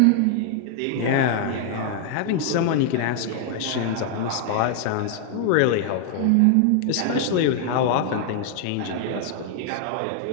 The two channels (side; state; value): both; different; correlation 0.00